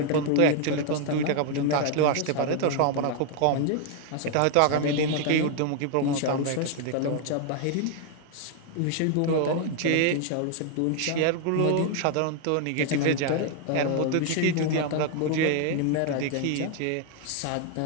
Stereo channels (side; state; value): both; different; correlation 0.00